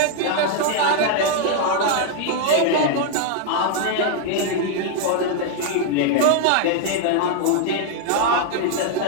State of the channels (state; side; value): different; both; correlation 0.00